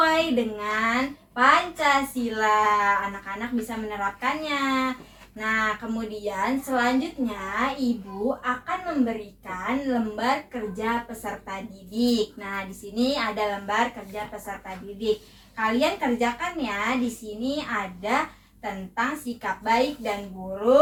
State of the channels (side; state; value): both; identical; correlation 1.00